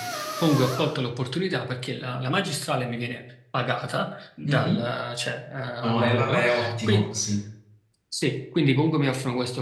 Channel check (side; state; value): both; identical; correlation 1.00